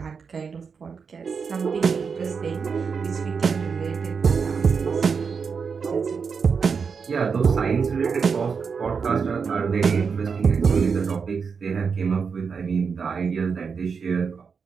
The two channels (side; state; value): left; quieter; 5.7 dB